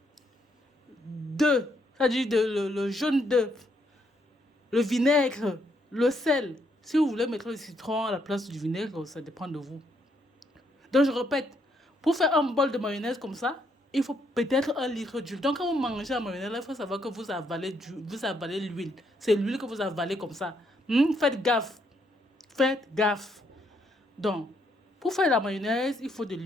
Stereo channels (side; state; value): both; normal; correlation 0.74